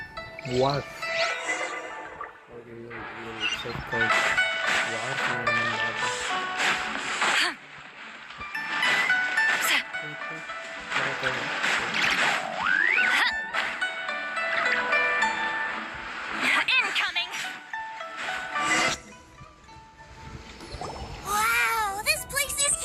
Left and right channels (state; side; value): identical; both; correlation 1.00